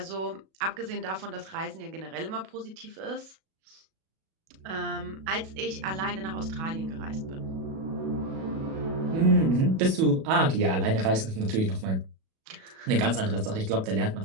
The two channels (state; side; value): late; left; 37 ms